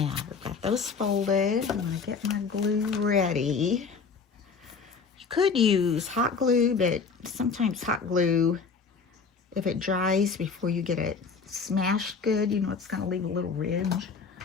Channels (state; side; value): quieter; right; 5.2 dB